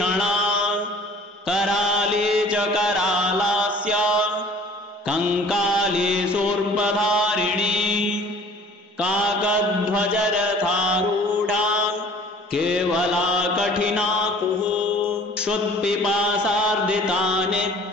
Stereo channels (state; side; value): normal; both; correlation 0.50